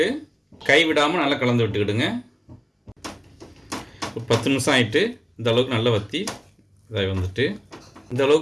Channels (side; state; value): both; identical; correlation 1.00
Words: கை விடாமல் நல்லா கலந்து விட்டுக்கிடுங்க. ஒரு 10 நிமிஷம் ஆகிட்டு இந்த அளவுக்கு நல்லா வற்றி இதாகி வந்துட்டு இந்த